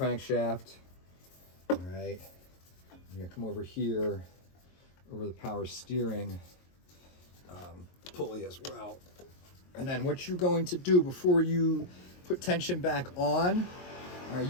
all right? You're gonna come over here, over the power steering pulley as well. And then what you're going to do before you put tension back on, all right,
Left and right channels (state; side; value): late; right; 22 ms